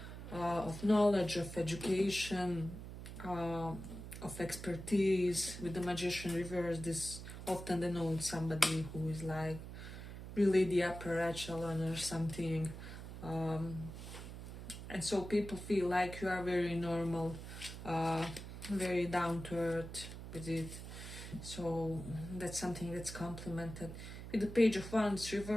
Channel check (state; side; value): noise; right; hum, 10 dB below the sound